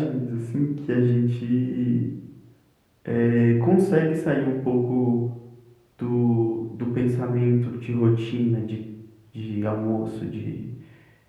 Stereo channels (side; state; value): both; identical; correlation 1.00